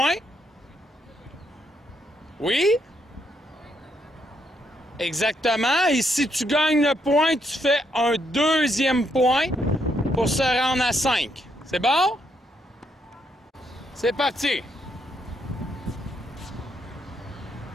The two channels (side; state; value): both; normal; correlation 0.76